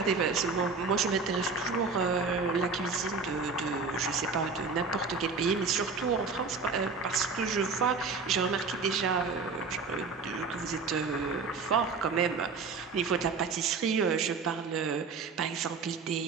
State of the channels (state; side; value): quieter; left; 4.6 dB